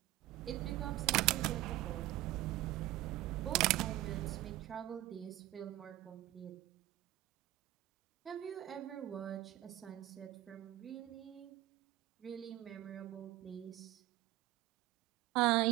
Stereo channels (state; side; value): quieter; left; 15.8 dB